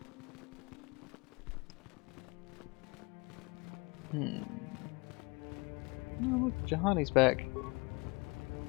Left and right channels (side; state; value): right; quieter; 27.6 dB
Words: Oh, look, Juhani's back.